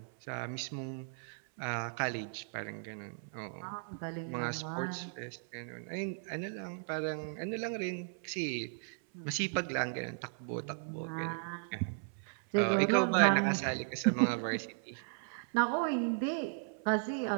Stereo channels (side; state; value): left; silent; 54 dB below the other